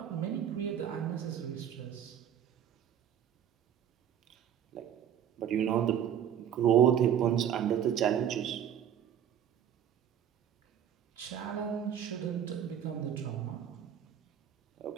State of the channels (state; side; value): quieter; left; 9.5 dB